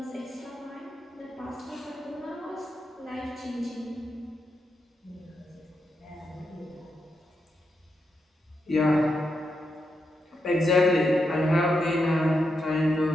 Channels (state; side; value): normal; both; correlation 0.84